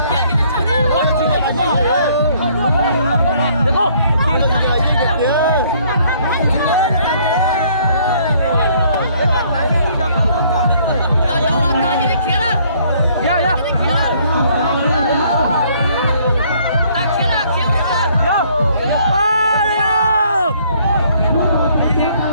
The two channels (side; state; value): both; inverted; correlation -0.62